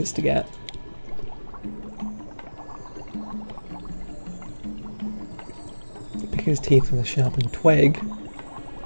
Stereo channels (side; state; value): both; inverted; correlation -1.00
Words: to get. Pick his teeth with a sharpened twig.